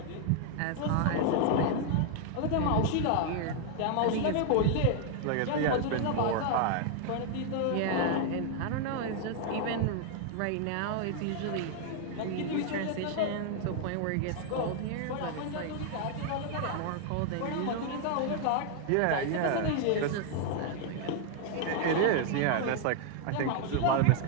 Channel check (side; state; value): both; different; correlation 0.00